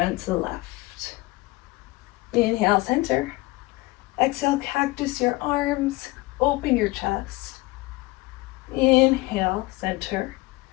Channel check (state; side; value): quieter; right; 21.9 dB